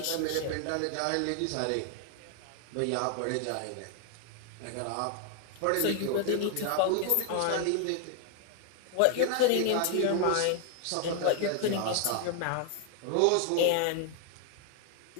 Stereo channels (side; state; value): both; different; correlation 0.00